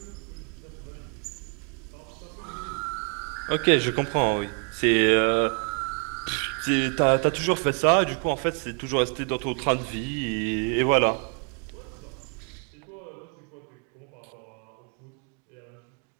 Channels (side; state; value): left; quieter; 39.0 dB